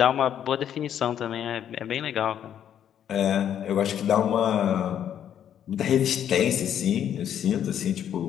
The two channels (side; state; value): right; quieter; 9.7 dB